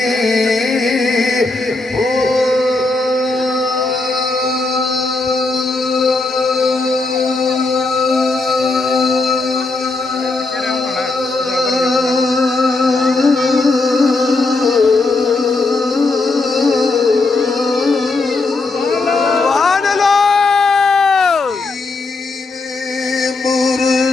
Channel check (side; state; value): right; quieter; 3.5 dB